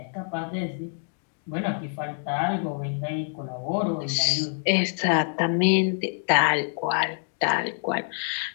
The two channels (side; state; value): right; silent; digital silence